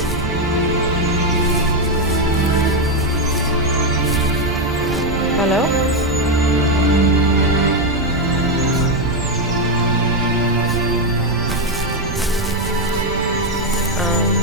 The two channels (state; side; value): noise; right; rumble, 8 dB below the sound